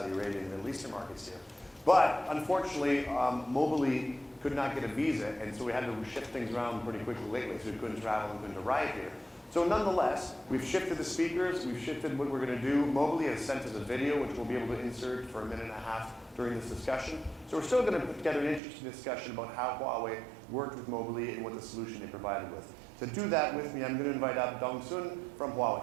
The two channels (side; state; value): left; drops out; at 18.6 s